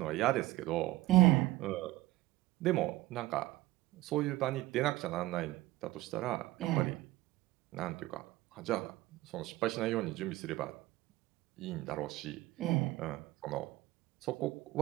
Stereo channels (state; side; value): quieter; left; 17.9 dB